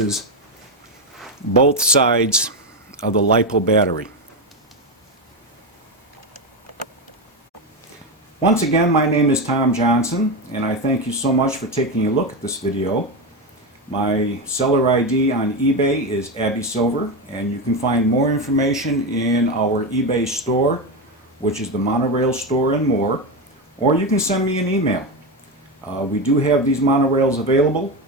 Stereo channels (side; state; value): both; normal; correlation 0.14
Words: both sides of the LiPo battery. Once again, my name is Tom Johnson, and I thank you so much for taking a look at this video. My seller ID on eBay is Abby Silver, and you can find more information in our eBay store, which is the Monorail store and more, or you can send me an email. We do have these monorails available.